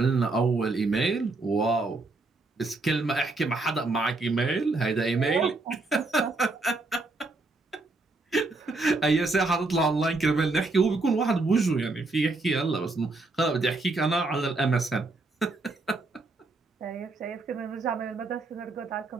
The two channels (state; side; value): quieter; left; 3.3 dB